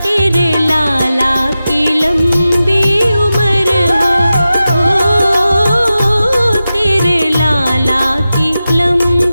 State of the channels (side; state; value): both; inverted; correlation -0.93